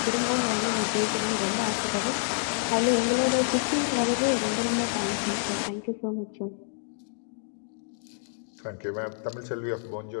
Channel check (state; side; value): silent; right; digital silence